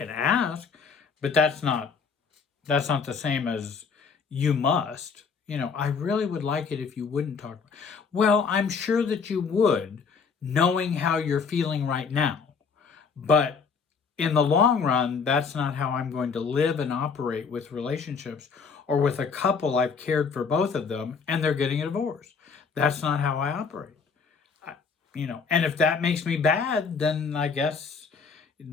ask, but that's not the same as you must. I really would like it if you wouldn't talk. Well, I'm sure that you would, knowing how you're feeling right now. But in the long run, that's not how I'm going to live and operate with relationships or with a couple I've cared for both of them and they're getting a divorce. That's not how I operate. And if that makes me bad, then I guess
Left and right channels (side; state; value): right; quieter; 5.5 dB